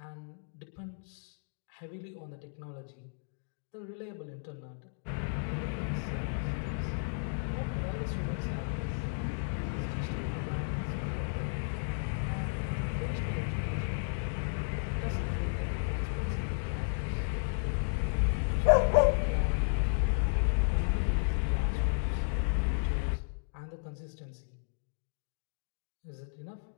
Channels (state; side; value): silent; right; digital silence